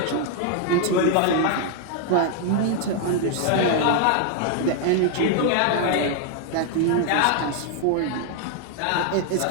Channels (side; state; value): both; different; correlation 0.00